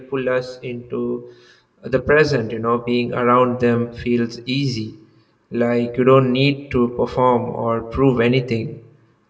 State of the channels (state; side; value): identical; both; correlation 1.00